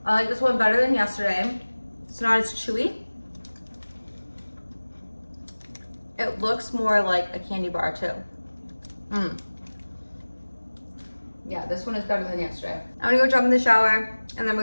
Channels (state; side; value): inverted; both; correlation -1.00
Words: I like this one better than yesterday. It's not as chewy. It looks more like a candy bar too. Yeah, this one is better than yesterday. I'm gonna go jump in the shower, and then